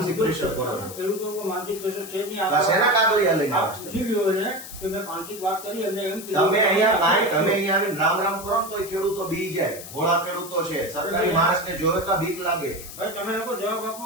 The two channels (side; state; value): left; noise; hiss, 13 dB below the sound